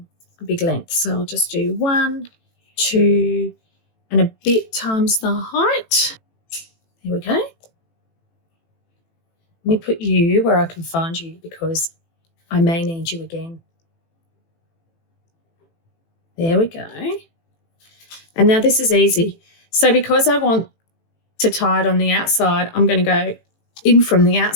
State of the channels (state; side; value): late; right; 18 ms